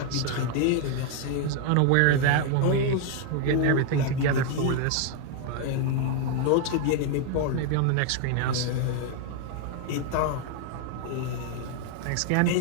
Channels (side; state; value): both; different; correlation 0.00